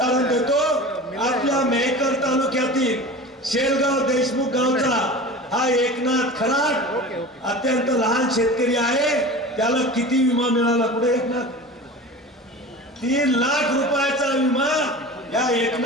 देतो. आपल्या मेहकर तालुक्यातील शेलगाव देशमुख गावचा हा एकनाथ खराट अत्यंत लहान शेतकरी आहे. त्याला किती विमा मिळाला? पुढे एकनाथ 3 लाख रुपयाचा विमा या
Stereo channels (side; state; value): both; normal; correlation 0.34